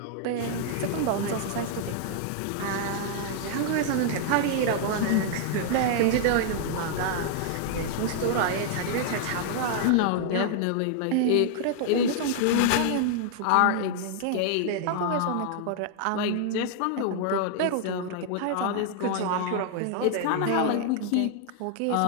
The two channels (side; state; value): both; different; correlation -0.01